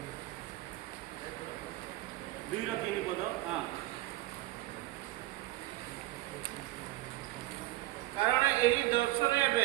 2-3 पद हाँ कारण यही दर्शन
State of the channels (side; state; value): left; quieter; 17.2 dB